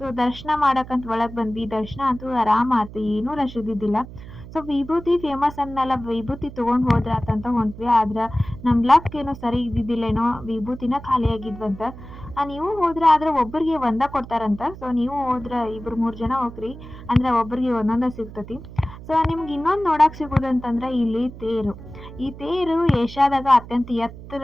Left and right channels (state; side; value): noise; right; hum, 15 dB below the sound